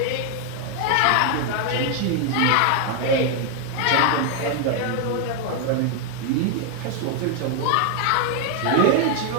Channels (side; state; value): both; different; correlation 0.00